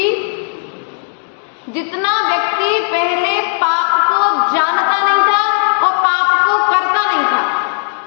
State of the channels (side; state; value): right; silent; digital silence